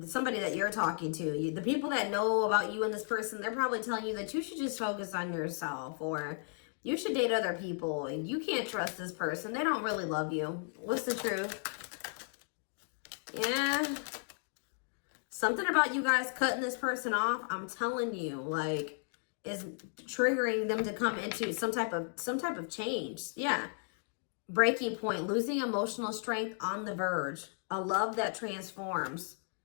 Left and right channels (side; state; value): right; silent; 55 dB below the other